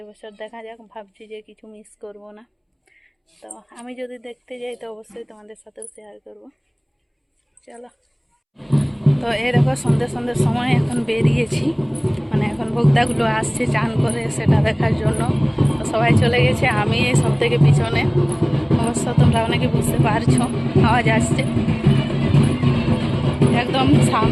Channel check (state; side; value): identical; both; correlation 1.00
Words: দেখা যাক, ভাবছি যে কিছু মিস করব না। তো আমি যদি দেখতে যাই তো অবশ্যই তোমাদের সাথেও শেয়ার করব। চলো। তো এই দেখো, সন্ধ্যের সময় এখন বেরিয়েছি, মানে এখন ভোক্তাগুলো আসছে চান করে, সেটা দেখার জন্য। তো সবাই চলে গেছে, আমি এই সব থেকে পিছনে। অবশ্য তোমরা অনেকে বুঝতে পারছো, আওয়াজ আসছে, একদম